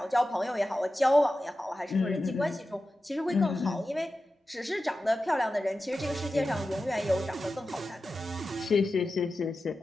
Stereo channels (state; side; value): normal; both; correlation 0.93